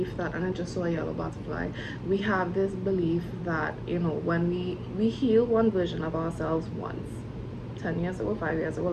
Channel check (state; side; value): identical; both; correlation 1.00